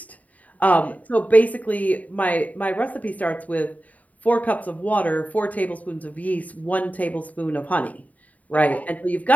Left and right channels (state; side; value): late; right; 0.071 ms